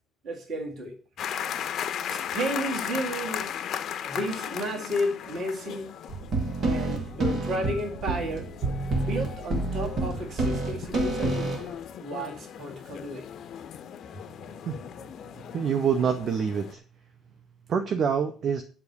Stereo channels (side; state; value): both; normal; correlation 0.63